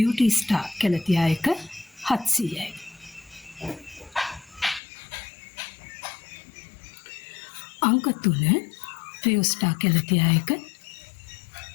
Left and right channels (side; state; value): right; drops out; at 4.8 s